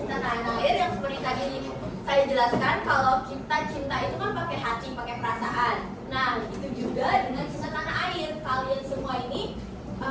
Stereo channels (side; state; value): both; identical; correlation 1.00